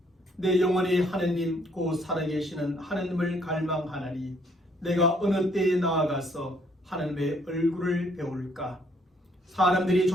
내 영혼이 하느님 곧 살아계시는 하느님을 갈망하나니 내가 어느 때에 나아가서 하느님의 얼굴을 배울까? 사람들이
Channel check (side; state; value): both; normal; correlation 0.66